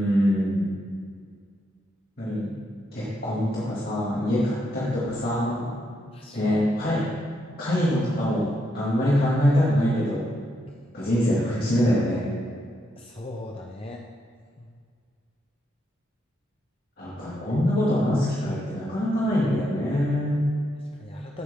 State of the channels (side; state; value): both; normal; correlation 0.80